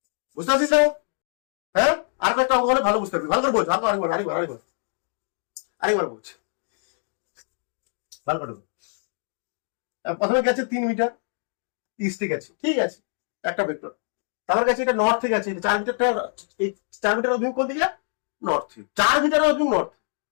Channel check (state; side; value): silent; right; 62 dB below the other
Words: বুঝতে পারছিস না? হ্যাঁ, আর কয়েকটা অঙ্ক হলে ভালো বুঝতে পারবি, ভালো করে বোঝ, আরেকবার বোঝ, ভালো করে বোঝ। প্রথমে গেছে 3 মিটার ইস্টে গেছে, ঠিক আছে, একটা ভেক্টর। তারপর গেছে এটা নর্থে গেছে, 4 মিটারটা, এই 4 মিটার অভিমুখ কোন দিকে, নর্থ। 4 মিটার অভিমুখ নর্থ।